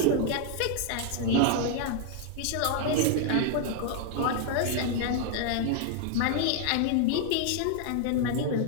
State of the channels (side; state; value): both; different; correlation 0.00